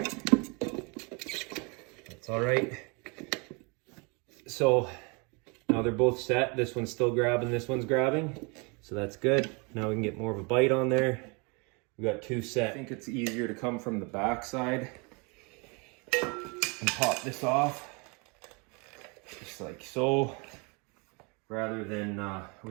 That's all right. So now they're both set. This one's still grabbing, this one's grabbing. So that's good. Now we can get more of a bite on there. We got two set. I think it's easier to come from the back side and pop this off, just like so, rather than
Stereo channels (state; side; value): quieter; left; 31.5 dB